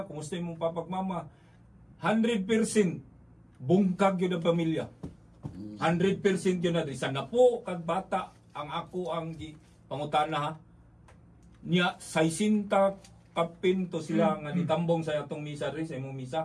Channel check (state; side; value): identical; both; correlation 1.00